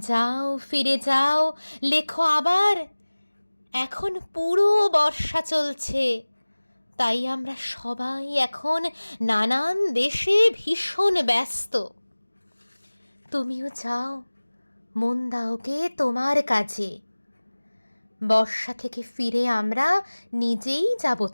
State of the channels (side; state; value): both; inverted; correlation -1.00